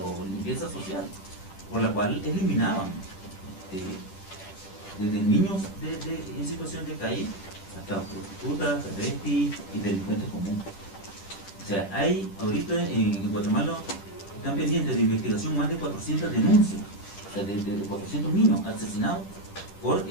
limpieza social, por la cual eliminaban desde niños en situación de calle hasta prostitutas, travestis y delincuentes comunes. O sea, hay ahorita en Guatemala están pendientes de investigación más de 400 denuncias, o sea, de 400 niños asesinados por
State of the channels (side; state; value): right; late; 10 ms